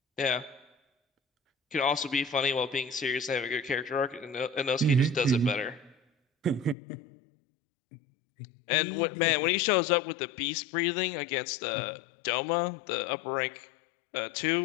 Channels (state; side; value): drops out; right; at 6.8 s